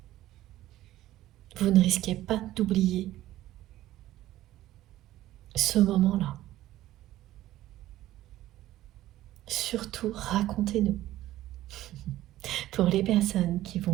Vous ne risquez pas d'oublier ce moment-là. Surtout, racontez-nous. Pour les personnes qui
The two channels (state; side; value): quieter; left; 14.7 dB